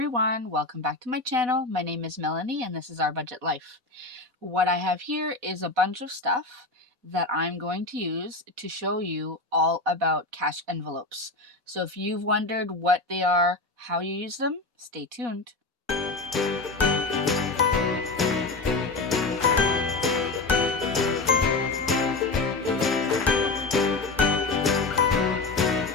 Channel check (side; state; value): right; quieter; 3.5 dB